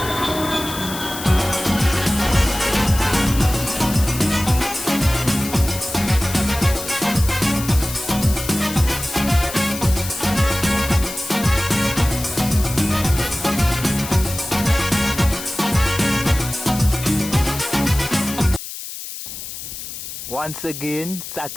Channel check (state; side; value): noise; left; hiss, 9 dB below the sound